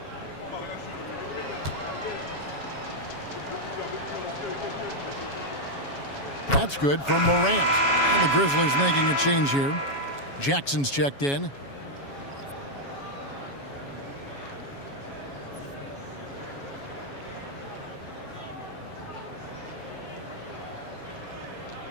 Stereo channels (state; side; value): late; right; 7.2 ms